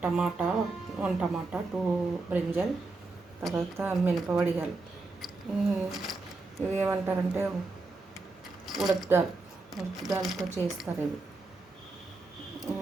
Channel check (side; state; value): left; quieter; 3.5 dB